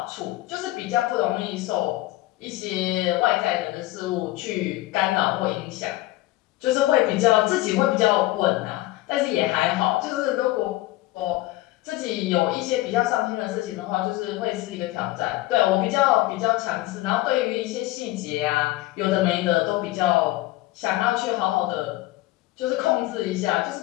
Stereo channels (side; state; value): right; quieter; 17.5 dB